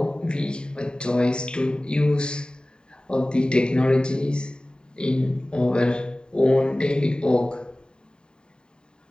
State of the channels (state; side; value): late; right; 0.048 ms